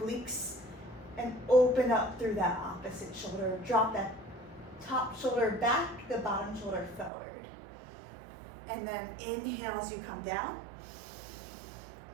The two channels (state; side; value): drops out; left; at 7.1 s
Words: and open up through that opposite shoulder. Drop that top shoulder back, the bottom shoulder forward. And then inhale as you come down.